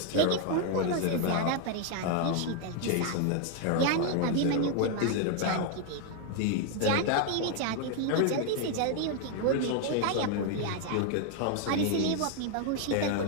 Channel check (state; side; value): different; both; correlation 0.00